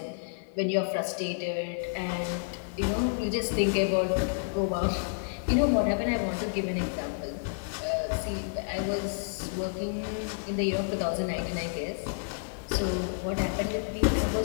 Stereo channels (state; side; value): silent; right; digital silence